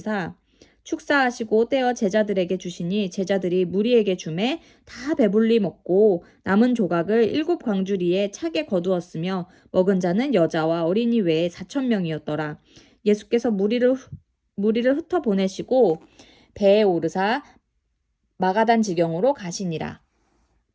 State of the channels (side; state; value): both; identical; correlation 1.00